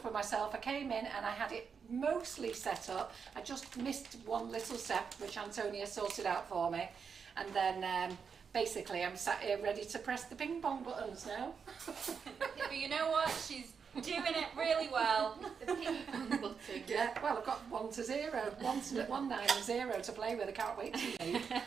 with myself. I came in and I had it mostly set up. I just missed one little step, which Antonia sorted out for me, and then basically I'm sat here ready to press the ping pong buttons now. Yeah, but you know what? She's doing it really well. The ping pong button. Yeah, well, I've got 1 to 0, 1, 9 and 0 to play with. I can't wait to leave.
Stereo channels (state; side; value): quieter; left; 6.2 dB